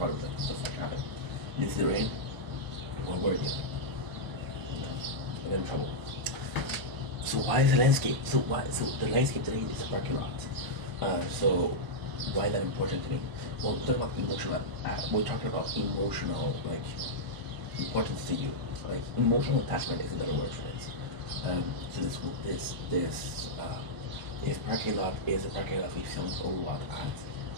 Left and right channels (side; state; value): left; late; 1.0 ms